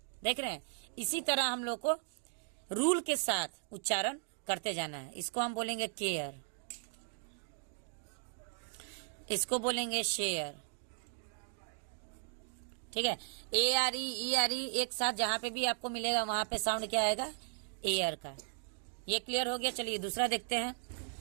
देख रहे हैं, इसी तरह हम लोग को रूल के साथ उच्चारण करते जाना है। इसको हम बोलेंगे केयर, इसको बोलेंगे शेयर। ठीक है, ARE ERE एक साथ जहां पे भी आपको मिलेगा वहां पे साउंड क्या आएगा, एयर का। ये क्लियर हो गया। चलिए दूसरा देखते हैं।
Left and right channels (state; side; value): silent; left; digital silence